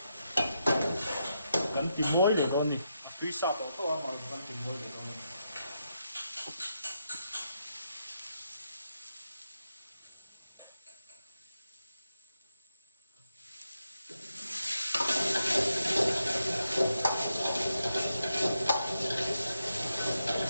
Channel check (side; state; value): both; inverted; correlation -0.84